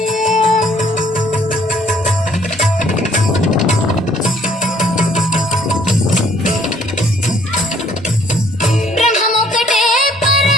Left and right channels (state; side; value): normal; both; correlation 0.61